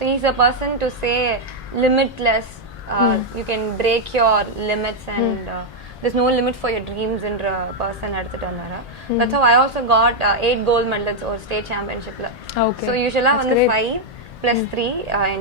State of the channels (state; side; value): normal; both; correlation -0.01